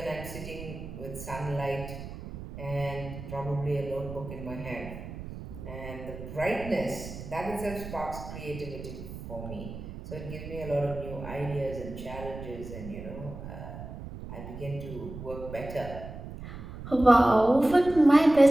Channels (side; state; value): right; noise; rumble, 11 dB below the sound